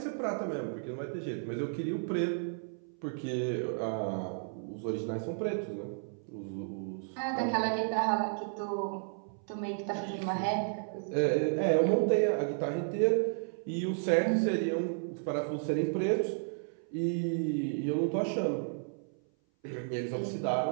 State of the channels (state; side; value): silent; left; 56 dB below the other